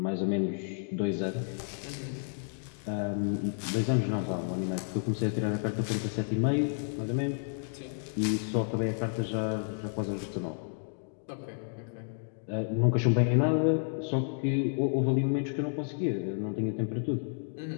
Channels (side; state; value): right; silent; digital silence